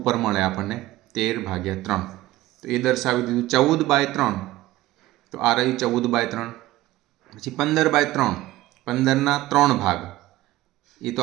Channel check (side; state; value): left; quieter; 16.7 dB